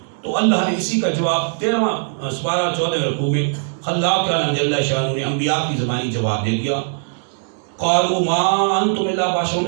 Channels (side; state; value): left; silent; digital silence